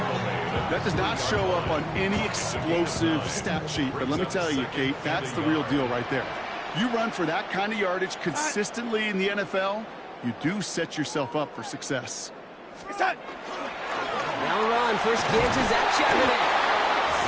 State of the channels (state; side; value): identical; both; correlation 1.00